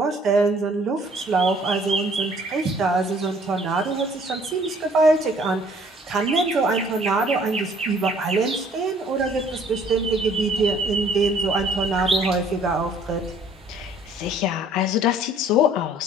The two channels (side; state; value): both; normal; correlation 0.57